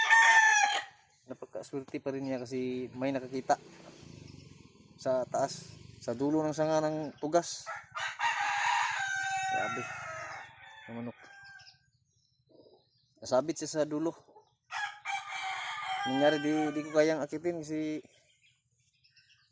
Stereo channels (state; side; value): identical; both; correlation 1.00